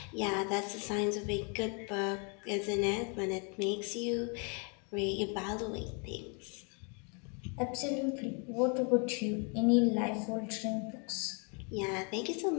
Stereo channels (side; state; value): right; quieter; 36.6 dB